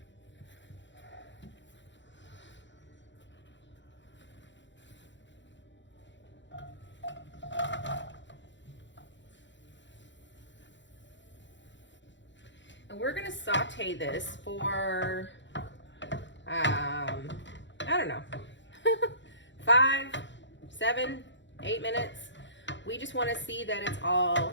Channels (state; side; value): late; right; 0.53 ms